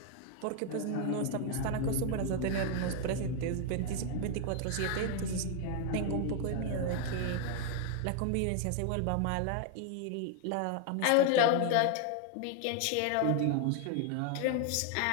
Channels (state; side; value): different; both; correlation 0.00